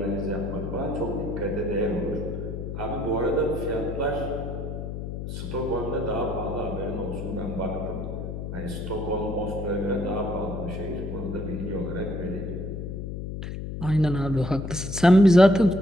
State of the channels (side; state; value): left; noise; hum, 6 dB below the sound